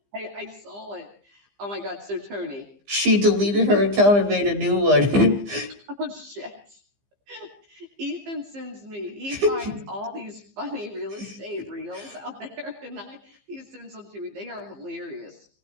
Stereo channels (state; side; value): late; left; 15 ms